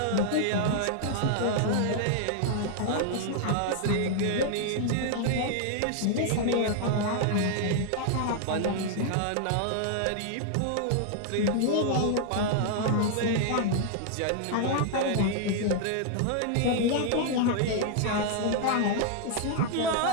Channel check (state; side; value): different; both; correlation 0.00